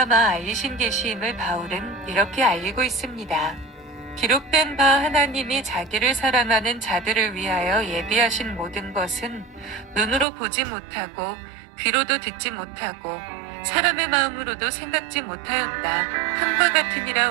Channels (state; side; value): drops out; left; at 10.2 s